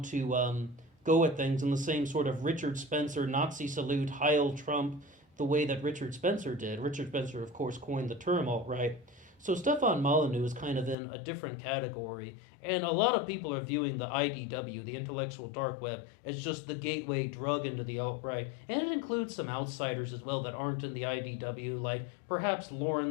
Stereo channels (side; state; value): right; drops out; at 11.0 s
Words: to go at things in the same sort of Richard Spencer, Nazi salute, Heil Trump, the way that Richard Spencer did. Richard Spencer, of course, coined the term alt-right. So Stefan Molyneux is kind of in a different category, and a lot of people are viewing the IDW, the intellectual dark web, as just the gateway drug into the alt-right, and it includes some outsiders as well that aren't in the IDW, like perhaps